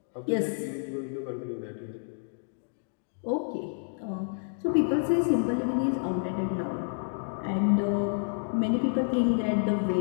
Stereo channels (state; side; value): silent; right; digital silence